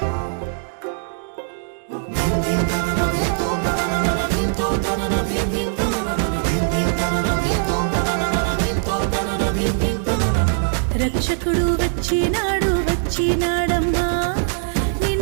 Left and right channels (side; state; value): left; silent; digital silence